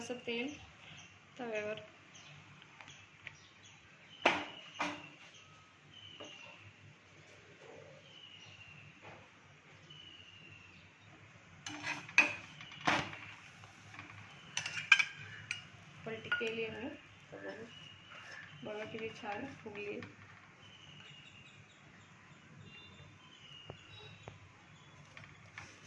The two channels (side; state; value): both; identical; correlation 1.00